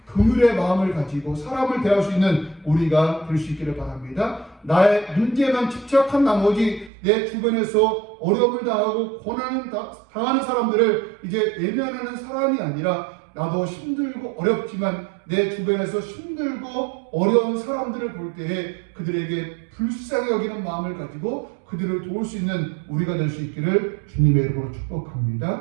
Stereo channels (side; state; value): left; drops out; at 6.9 s